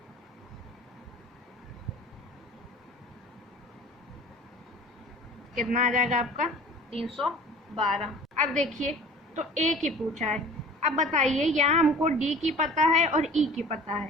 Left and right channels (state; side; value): normal; both; correlation 0.44